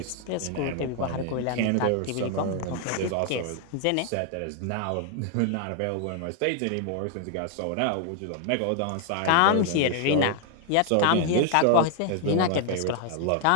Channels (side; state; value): both; different; correlation 0.00